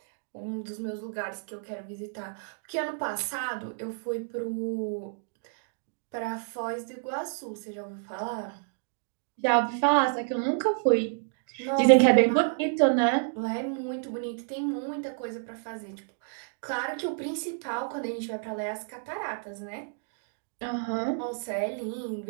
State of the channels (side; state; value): left; silent; digital silence